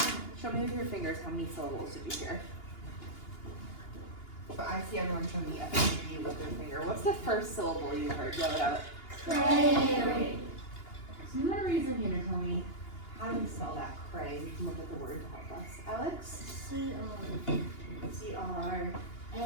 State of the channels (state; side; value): late; right; 2.8 ms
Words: Show me with your fingers how many syllables did you hear? But I see everyone show me a three with their finger. What's the first syllable you heard? Yell it out. Cray. So you want to raise your hand and tell me how do we spell that cray? We can look at the word to help us. Alex? C-R-A-N.